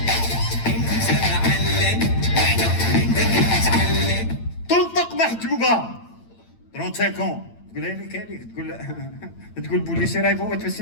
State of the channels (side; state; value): right; late; 8.9 ms